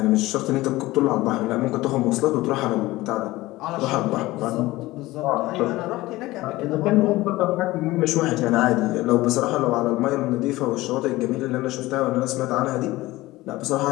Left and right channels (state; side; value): quieter; right; 18.6 dB